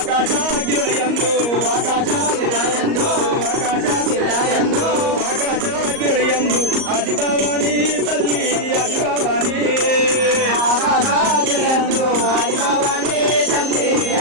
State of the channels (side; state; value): left; late; 38 ms